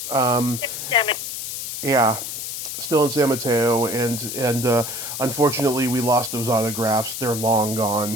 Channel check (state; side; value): noise; left; hiss, 6 dB below the sound